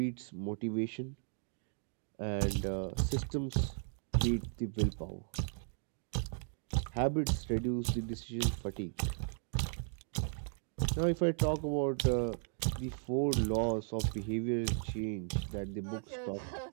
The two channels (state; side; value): silent; left; 54 dB below the other